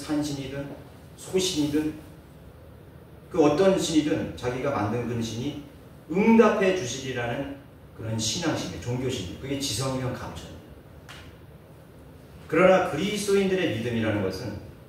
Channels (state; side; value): identical; both; correlation 1.00